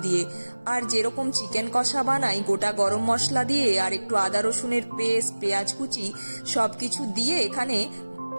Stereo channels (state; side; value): inverted; both; correlation -1.00